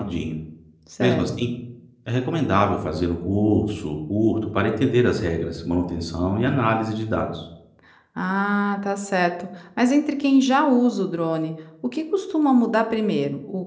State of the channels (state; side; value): identical; both; correlation 1.00